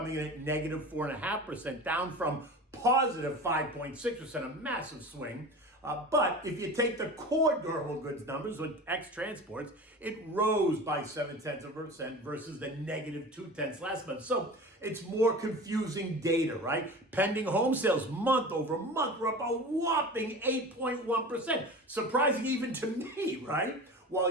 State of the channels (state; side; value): normal; both; correlation 0.34